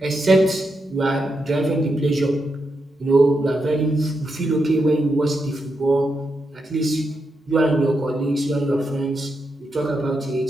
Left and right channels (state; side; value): normal; both; correlation 0.84